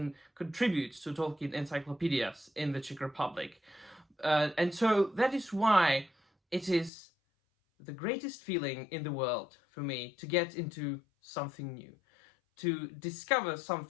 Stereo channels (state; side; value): drops out; right; at 6.9 s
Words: contributes to Tolkien encyclopedias in the Czech Republic. And so that is why it is the greatest feeling in the world for me to get into something new, to discover